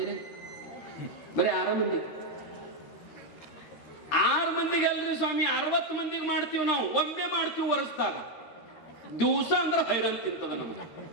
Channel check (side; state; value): right; late; 13 ms